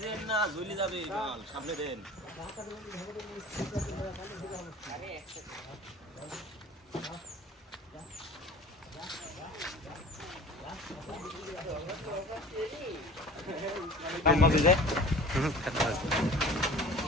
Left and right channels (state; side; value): normal; both; correlation 0.42